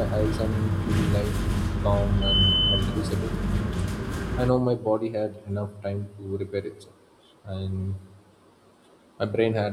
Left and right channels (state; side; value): identical; both; correlation 1.00